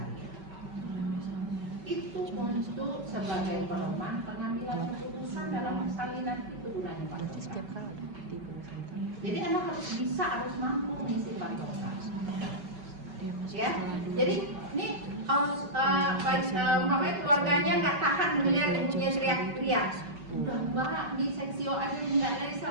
Itu untuk sebagai pedoman pengambilan keputusan dalam persalinan itu gunanya patogram. Jadi anak harus mampu mengisi patogram. Ya, jadi ini umpamanya keluarganya nggak tahan melihat ibunya teriak-teriak. Udah mbak di seksio aja nggak bisa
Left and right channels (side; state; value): left; late; 5.3 ms